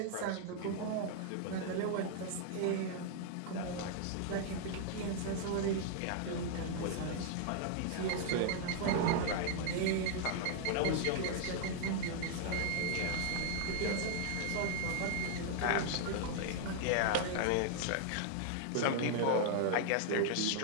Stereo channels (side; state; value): both; different; correlation 0.00